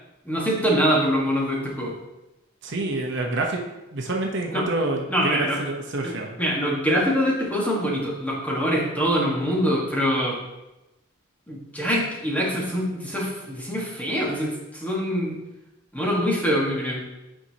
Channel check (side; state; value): both; normal; correlation 0.47